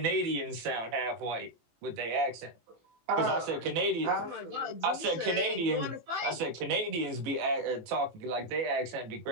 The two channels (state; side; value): late; left; 18 ms